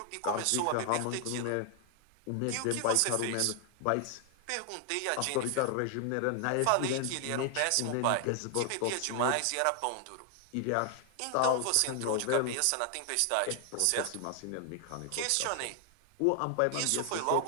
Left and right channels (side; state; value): both; different; correlation 0.00